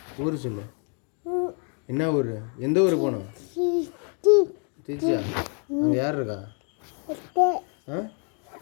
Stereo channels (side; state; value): right; quieter; 39.5 dB